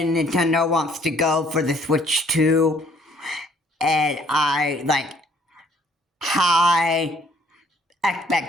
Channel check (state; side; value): normal; both; correlation 0.62